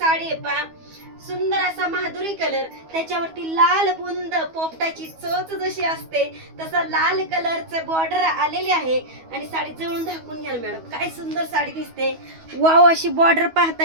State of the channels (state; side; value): late; left; 12 ms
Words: आहे पहा. सुंदर असा माधुरी कलर, त्याच्यावरती लाल बुंद पोपटाची चोच जशी असते तसा लाल कलरचं बॉर्डर आलेली आहे. आणि साडी जवळून दाखवून घ्या मॅडम, काय सुंदर साडी दिसते. वाव, अशी बॉर्डर